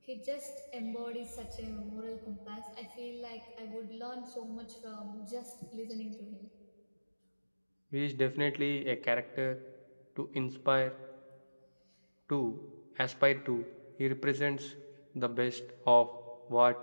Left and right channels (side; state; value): both; inverted; correlation -1.00